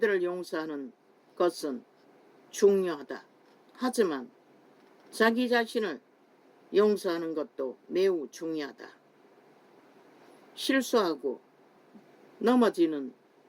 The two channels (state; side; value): identical; both; correlation 1.00